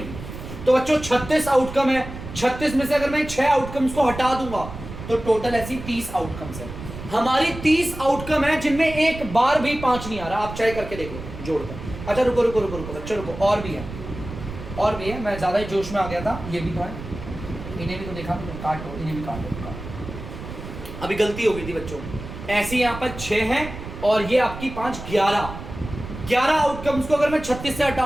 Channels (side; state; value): right; noise; rumble, 11 dB below the sound